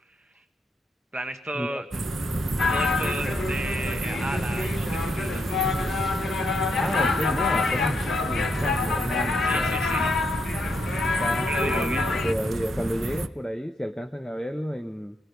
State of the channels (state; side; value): normal; both; correlation 0.79